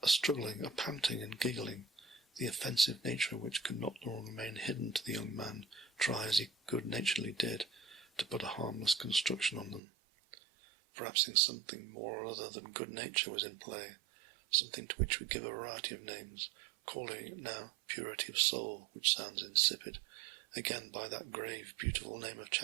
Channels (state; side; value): drops out; left; at 9.8 s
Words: A struggling, a panting and giggling, the offensive nature of which could not long remain hidden to the young man, try as he good-naturedly did to put a harmless construction on them. Perhaps something more or other than good nature was in play, something to which we give a variety of names, calling it now purity of soul, which sounds insipid, again by that grave, beautiful name of